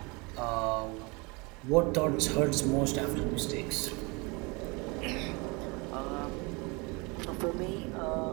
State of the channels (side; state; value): left; quieter; 28.2 dB